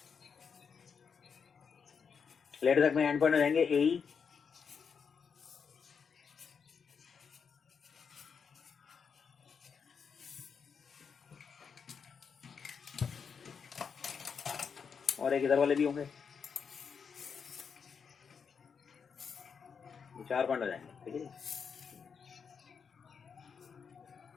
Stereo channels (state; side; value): quieter; right; 6.3 dB